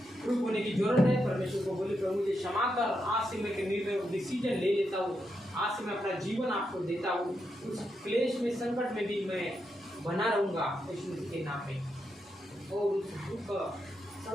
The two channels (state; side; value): normal; both; correlation 0.84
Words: होने की जरूरत है। परमेश्वर को बोले, प्रभु मुझे क्षमा कर, आज से मैं निर्णय डिसीजन ले लेता हूँ, आज से मैं अपना जीवन आपको देता हूँ। उस क्लेश में संकट में भी मैं बना रहूँगा यीशु मसीह के नाम में, और उस दुख